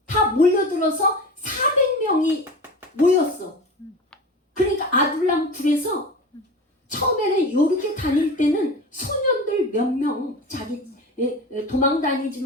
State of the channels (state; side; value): normal; both; correlation 0.31